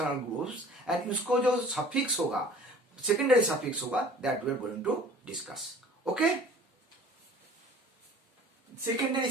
groups and उसको जो suffix होगा, secondary suffix होगा, that we are going to discuss. Okay, secondary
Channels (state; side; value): normal; both; correlation 0.48